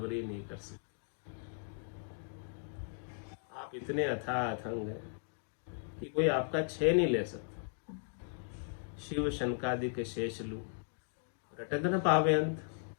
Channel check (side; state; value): right; silent; digital silence